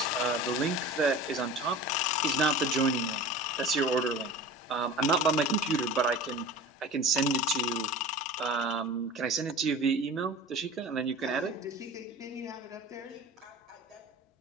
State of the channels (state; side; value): normal; both; correlation 0.36